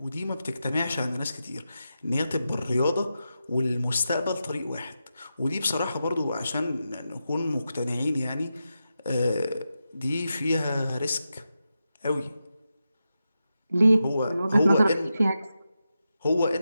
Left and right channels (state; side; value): inverted; both; correlation -0.89